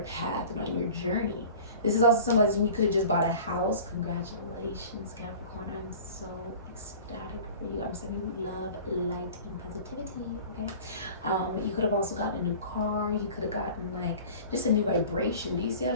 path and on your journey. This is also symbolizing you could have just bought a house. Congratulations, Capricorn. I'm so ecstatic for you. I'm sending you love, light, and positivity, okay? You could have also gotten a new car. You could have gotten like just a new vibration. Do you see how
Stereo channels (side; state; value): both; inverted; correlation -0.42